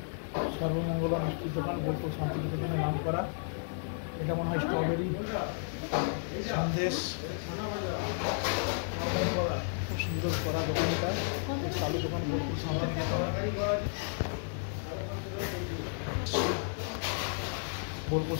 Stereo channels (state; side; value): silent; right; digital silence